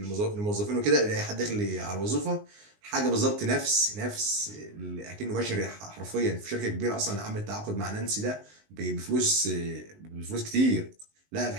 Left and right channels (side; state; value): left; late; 19 ms